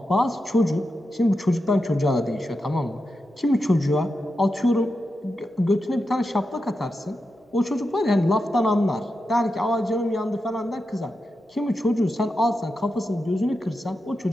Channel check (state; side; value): normal; both; correlation 0.88